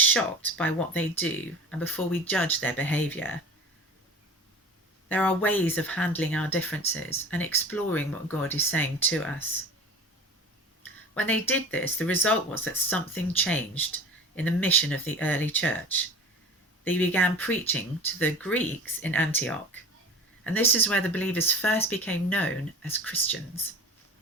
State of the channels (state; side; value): normal; both; correlation 0.37